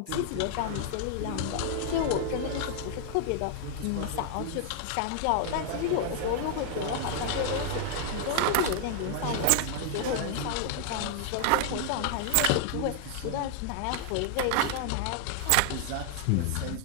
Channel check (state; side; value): different; both; correlation 0.00